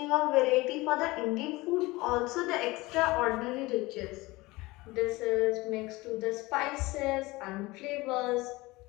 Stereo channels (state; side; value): quieter; right; 21.4 dB